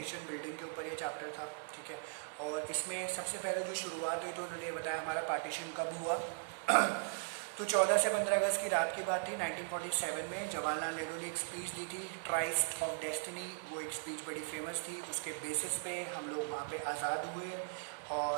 बिल्डिंग के ऊपर ये चैप्टर था, ठीक है। और इसमें सबसे पहले जो शुरुआत हुई तो उन्होंने ये बताया हमारा पार्टीशन कब हुआ। तो 14 से 15 अगस्त की रात की बात थी 1947 में। जवाहरलाल नेहरू ने एक स्पीच दी थी, ट्राइस्ट ऑफ डेस्टिनी। वो एक स्पीच बड़ी फेमस थी, उसके बेसिस पे हम लोग वहाँ पे आज़ाद हुए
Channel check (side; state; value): left; silent; digital silence